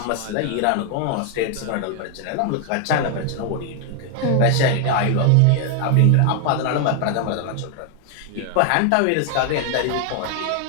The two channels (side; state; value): both; different; correlation 0.00